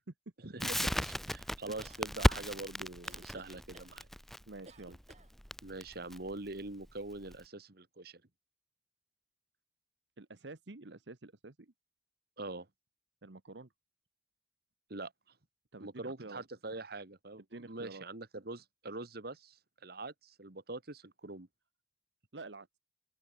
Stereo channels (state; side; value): normal; both; correlation 0.67